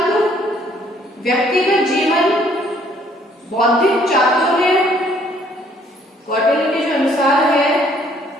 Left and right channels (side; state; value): both; normal; correlation 0.63